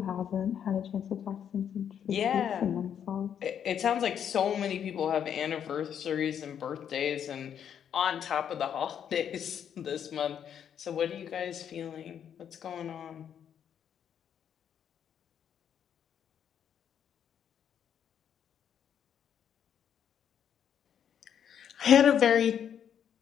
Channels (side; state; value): right; quieter; 8.7 dB